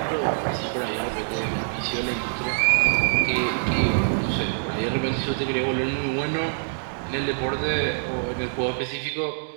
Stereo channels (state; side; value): silent; left; digital silence